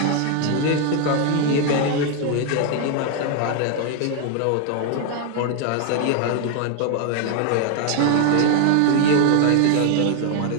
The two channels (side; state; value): both; different; correlation 0.01